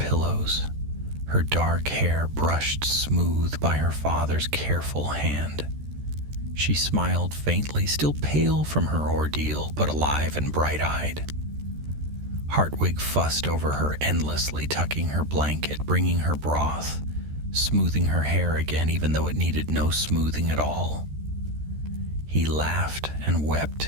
her dark hair brushed smooth by her father's careful hand. She smiled faintly, still pale from her ordeal, but alive and bright-eyed. Hartwig fussed over her endlessly, tucking her blanket, bringing her broth, smoothing her hair again, even though it needed no smoothing at all. He laughed and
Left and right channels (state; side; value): late; left; 13 ms